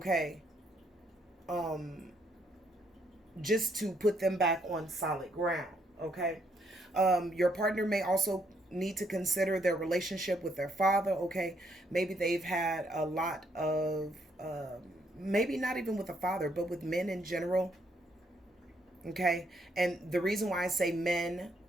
Just to put them back on solid ground, okay? Your partner may also need to consider their relationship with their father, okay? Maybe they've had a lot of, maybe not even with the father, but with men in general, okay? And the reason why I say men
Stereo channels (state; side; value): normal; both; correlation 0.72